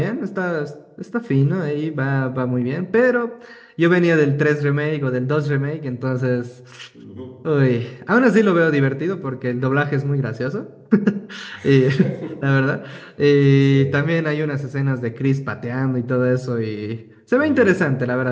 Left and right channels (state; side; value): identical; both; correlation 1.00